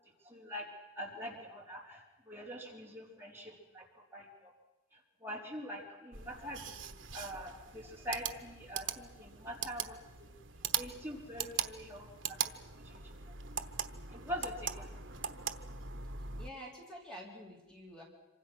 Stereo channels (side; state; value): left; quieter; 4.3 dB